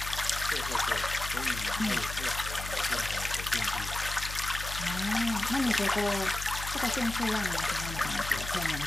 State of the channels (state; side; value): noise; left; hum, 8 dB below the sound